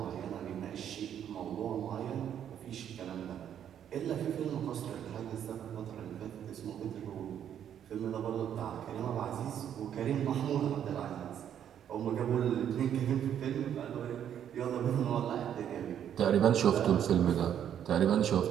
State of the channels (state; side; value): quieter; left; 9.6 dB